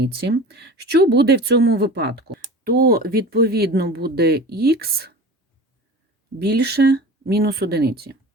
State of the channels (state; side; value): normal; both; correlation 0.36